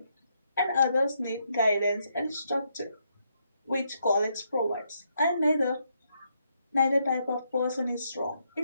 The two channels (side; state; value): both; inverted; correlation -0.77